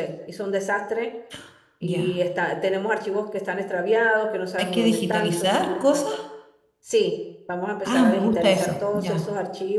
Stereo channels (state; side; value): identical; both; correlation 1.00